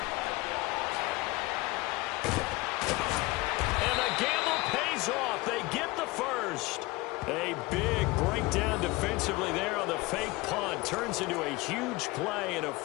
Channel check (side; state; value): right; quieter; 22.1 dB